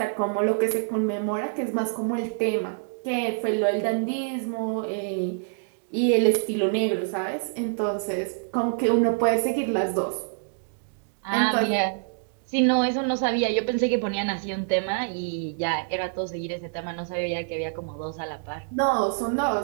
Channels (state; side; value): silent; left; digital silence